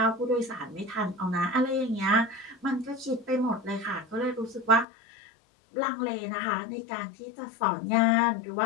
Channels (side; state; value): right; drops out; at 4.9 s